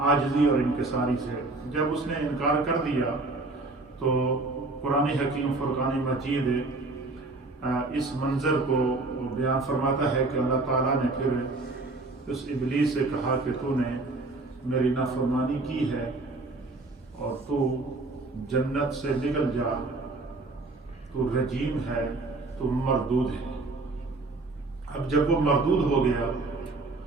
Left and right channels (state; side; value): quieter; left; 3.3 dB